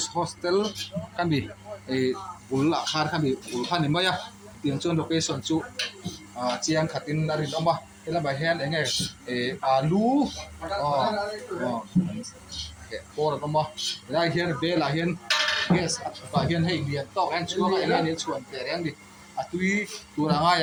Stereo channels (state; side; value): identical; both; correlation 1.00